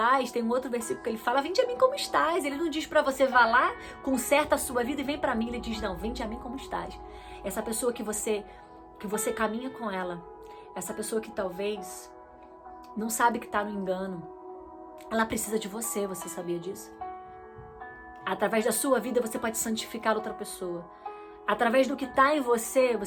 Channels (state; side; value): identical; both; correlation 1.00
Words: Tem um outro versículo que ele fala, vinde a mim como estás. Ele não diz para você, vá lá, conserta a sua vida e vem para mim. Ele diz, não, vinde a mim como estás. Essa pessoa que você caminha com ela, essa pessoa que talvez não sabe que está no engano, ela precisa de você, você sabia disso? Através da sua vida você pode santificar outra pessoa. Através do que está em você,